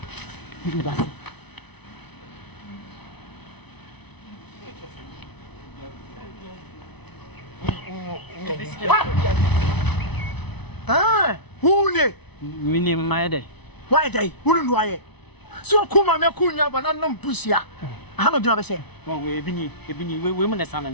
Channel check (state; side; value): late; right; 0.99 ms